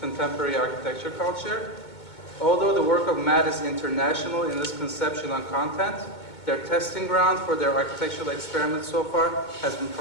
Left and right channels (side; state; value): right; late; 2.2 ms